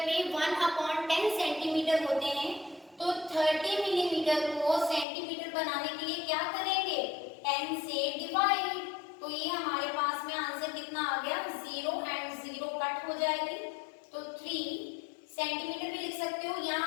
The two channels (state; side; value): drops out; right; at 5.1 s